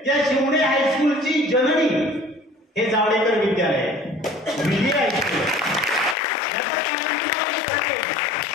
या शिवणे हायस्कूलची जननी हे जावडेकर विद्यालय आहे, विजय हायस्कूल.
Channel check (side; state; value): right; drops out; at 6.2 s